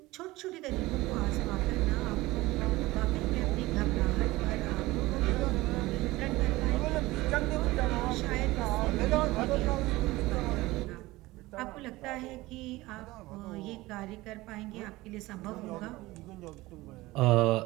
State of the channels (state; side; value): quieter; left; 19.4 dB